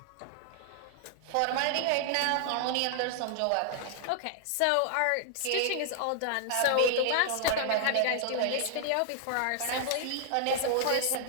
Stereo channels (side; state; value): both; different; correlation 0.00